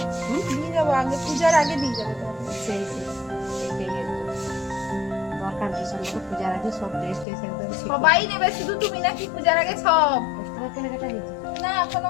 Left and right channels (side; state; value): right; drops out; at 7.2 s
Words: পিস নিয়ে যাবো, আগে পূজার আগে নিয়ে যাবো তোমাকে। সেই এটাই দরকার, ডিসেম্বর পূজার আগে সব ড্রেস ট্রেস একদম ঠিক সবাই নেবে, শুধু তুমি নাকি পূজার আগে সব? 10 টাকা কেনাকাটা হয়েছে। না এখনো